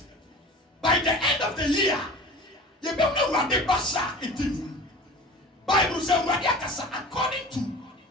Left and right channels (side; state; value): both; normal; correlation 0.38